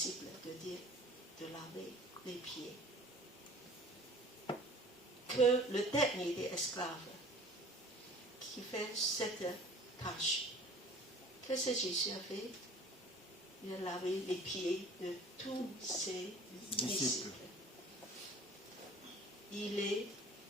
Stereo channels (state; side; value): normal; both; correlation 0.47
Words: de laver les pieds. Que le dernier des esclaves qui fait cette tâche, qu'est-ce que Jésus a fait? Il a lavé les pieds de tous ses disciples. Il est